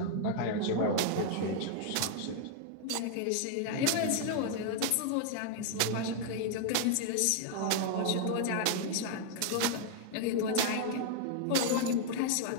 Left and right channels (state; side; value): different; both; correlation 0.00